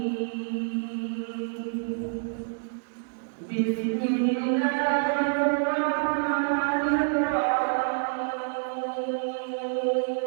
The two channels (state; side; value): silent; left; digital silence